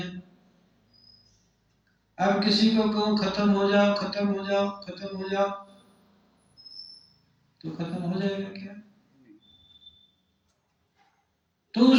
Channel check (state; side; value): identical; both; correlation 1.00